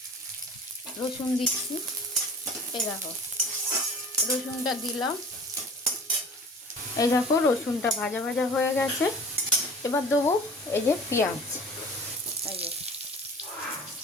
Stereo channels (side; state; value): both; normal; correlation 0.42